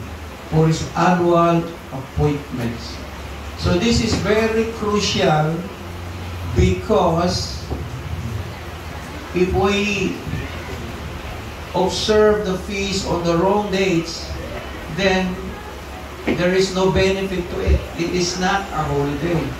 for His annual appointments. So this is very crucial because if we observe the feast on the wrong dates, then there is no benefit to it. It is not a holiday.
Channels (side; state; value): both; identical; correlation 1.00